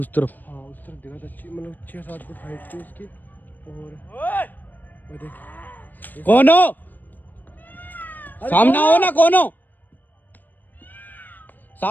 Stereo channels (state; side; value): late; right; 0.088 ms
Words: तरफ? हाँ उस तरफ दिखा था, मतलब 6-7 फुट हाइट थी उसकी। और वो देख, कौन हो, सामने आओ ना, कौन हो,